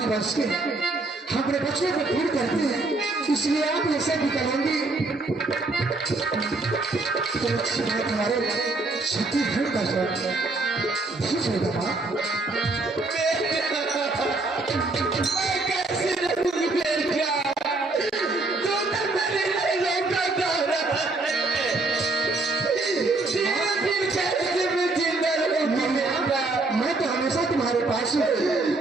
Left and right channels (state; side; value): quieter; left; 3.3 dB